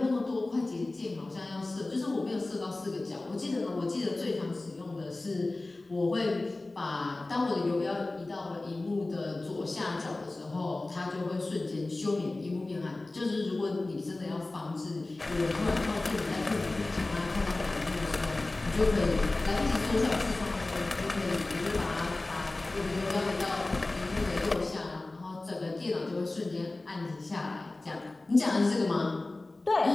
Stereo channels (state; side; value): quieter; right; 3.0 dB